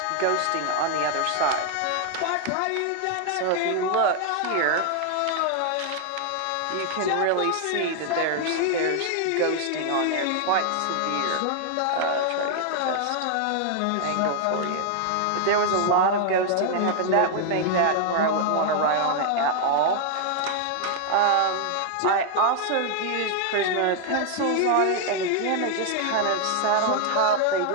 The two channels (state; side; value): different; both; correlation 0.00